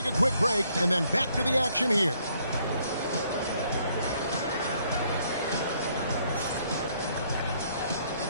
a quick break and then back to the action here.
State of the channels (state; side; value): inverted; both; correlation -0.68